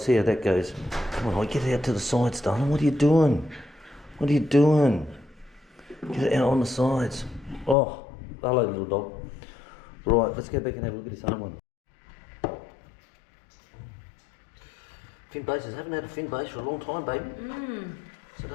how that goes. Come on, get it out to the sides, darling. What are you doing? Get it out on the sides. Oh, hello, little dog. Right, let's go back and have a look at this other one. Fin bases. Haven't had a fin base for a long time, baby. So I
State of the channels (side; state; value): right; drops out; at 7.8 s